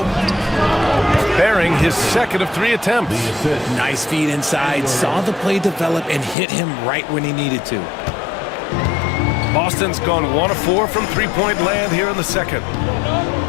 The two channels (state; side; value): drops out; right; at 6.4 s